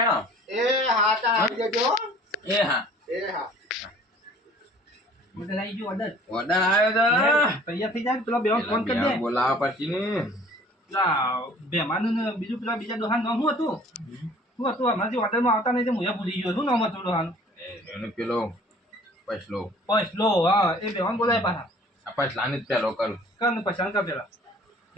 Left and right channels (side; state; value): both; normal; correlation 0.51